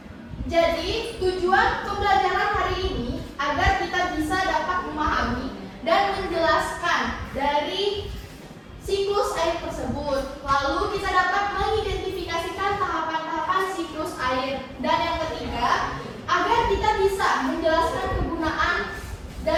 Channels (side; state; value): both; identical; correlation 1.00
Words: jadi tujuan pembelajaran hari ini agar kita bisa dapat memahami dan menjelaskan dari siklus air tersebut. Lalu kita dapat mengidentifikasikan tahapan-tahapan siklus air. Dan yang ketiga, agar kita bisa menjelaskan kegunaan